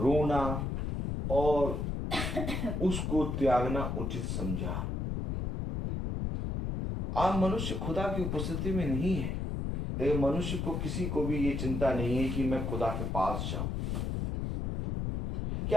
और उसको त्यागना उचित समझा। आज मनुष्य खुदा की उपस्थिति में नहीं है, लेकिन मनुष्य को किसी को भी ये चिंता नहीं है कि मैं खुदा के पास जाऊं।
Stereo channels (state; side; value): noise; left; rumble, 2 dB below the sound